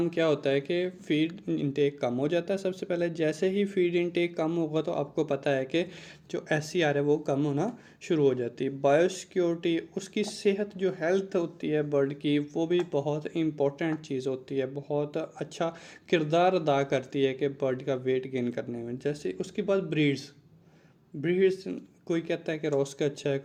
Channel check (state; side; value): identical; both; correlation 1.00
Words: क्या होता है कि फीड इनटेक कम हो जाता है। सबसे पहले जैसे ही फीड इनटेक कम होगा तो आपको पता है कि जो एससीआर है वो कम होना शुरू हो जाती है। बायोसिक्योरिटी, उसकी सेहत, जो हेल्थ होती है बर्ड की, वो भी बहुत इम्पोर्टेंट चीज़ होती है, बहुत अच्छा किरदार अदा करती है कि बर्ड का वेट गेन करने में। जैसे उसके बाद ब्रीड्स, ब्रीड्स कोई कहता है कि रोस का अच्छा है,